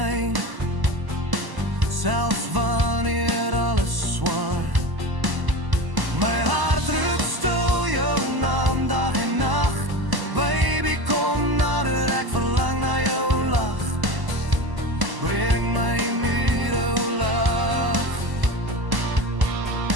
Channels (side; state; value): left; late; 1.0 ms